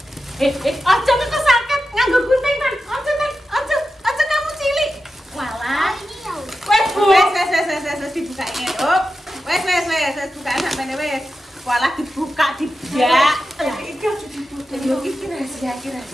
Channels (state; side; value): normal; both; correlation 0.91